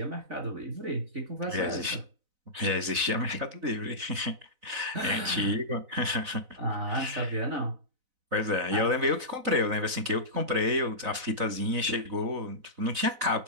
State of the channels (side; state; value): left; late; 4.0 ms